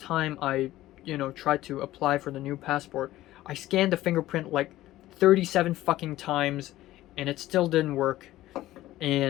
I tried to apply for the new passport, I scanned the fingerprint like 37 fucking times and it still didn't work.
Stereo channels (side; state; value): right; quieter; 15.5 dB